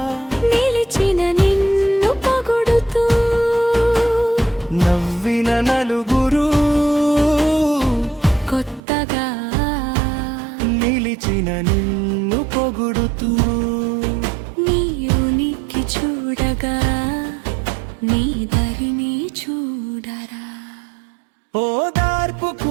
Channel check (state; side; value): drops out; left; at 8.8 s